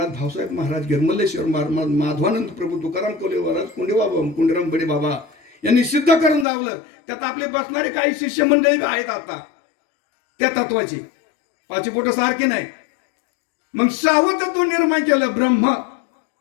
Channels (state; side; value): drops out; right; at 6.5 s